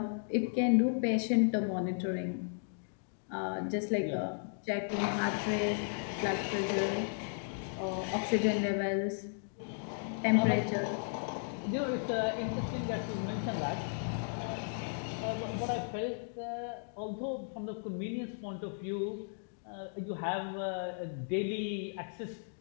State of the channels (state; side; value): silent; right; digital silence